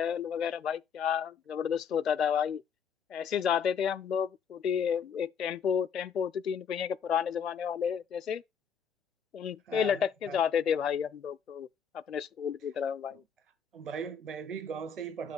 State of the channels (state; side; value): quieter; right; 6.9 dB